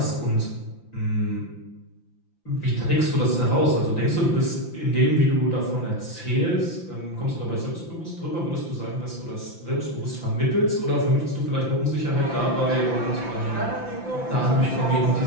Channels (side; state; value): right; late; 5.9 ms